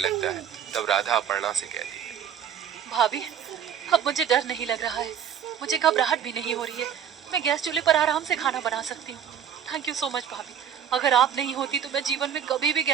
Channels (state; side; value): quieter; left; 8.7 dB